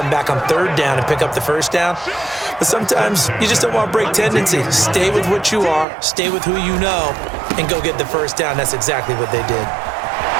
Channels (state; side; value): drops out; left; at 5.9 s